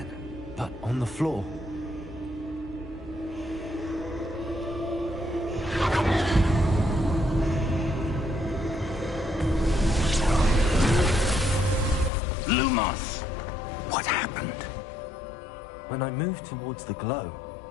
but on the floor. Lumos! What happened? When I moved towards the glow,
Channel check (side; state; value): right; drops out; at 12.1 s